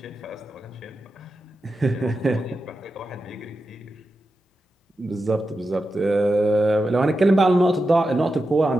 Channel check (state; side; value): normal; both; correlation 0.90